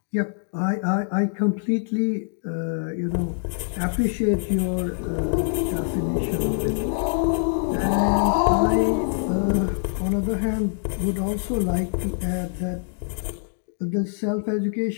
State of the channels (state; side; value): silent; right; digital silence